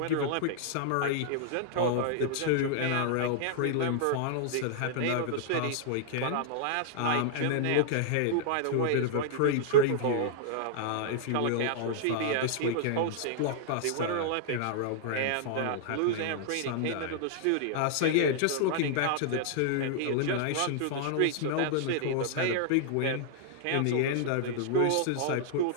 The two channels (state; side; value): different; both; correlation -0.01